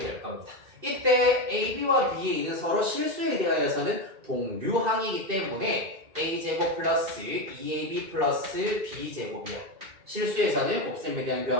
겁니다. 이때 AB와 BA는 서로 실수에 대하여서는 동류항이기 때문에 A제곱 플러스 2AB 플러스 B제곱이야. 실수에서는 곱셈에 대한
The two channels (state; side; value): late; left; 2.6 ms